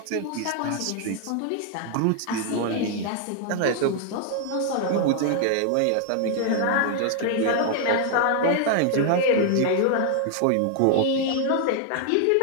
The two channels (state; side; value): different; both; correlation 0.00